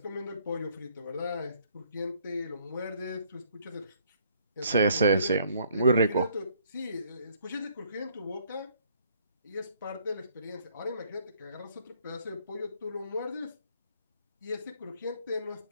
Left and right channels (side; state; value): both; inverted; correlation -0.64